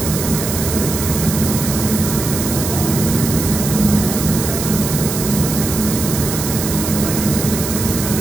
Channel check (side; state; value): right; noise; hiss, 5 dB below the sound